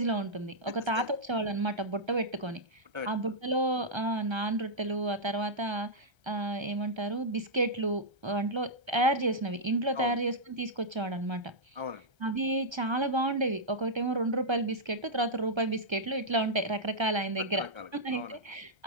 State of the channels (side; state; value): left; late; 1.3 ms